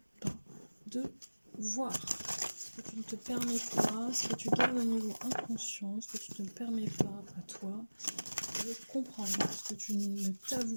pas de voir, ce que tu ne te permets pas, ce que tu gardes au niveau inconscient, ce que tu ne te permets pas à toi de comprendre, ce que tu ne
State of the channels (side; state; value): both; inverted; correlation -1.00